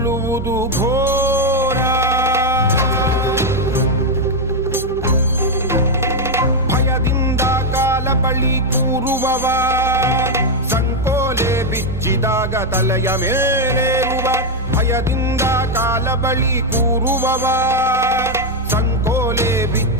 ಘೋರ. ಭಯದಿಂದ ಕಾಲ ಬಳಿ ಕೂರುವವ, ಸಂಕೋಲೆ ಬಿಚ್ಚಿದಾಗ ತಲೆಯ ಮೇಲೇರುವ. ಭಯದಿಂದ ಕಾಲ ಬಳಿ ಕೂರುವವ, ಸಂಕೋಲೆ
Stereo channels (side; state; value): both; normal; correlation 0.03